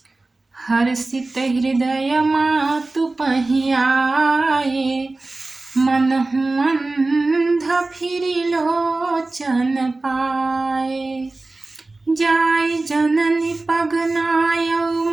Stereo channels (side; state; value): left; quieter; 3.2 dB